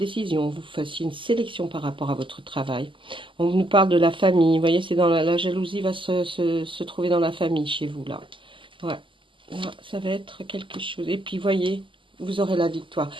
vous fassiez une sélection par rapport à votre travail. On nous parle de la famille. Vous voyez, c'est dans la jalousie va se trouver dans la famille chez vous, là. Ouais. Là, ça va être quelque chose. Et puis, voyez, vous aurez la victoire.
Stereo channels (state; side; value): late; left; 0.25 ms